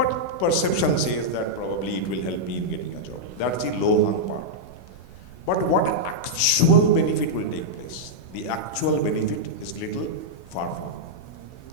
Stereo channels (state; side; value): late; right; 16 ms